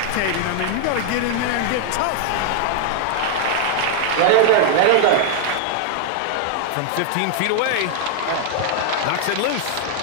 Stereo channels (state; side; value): different; both; correlation 0.00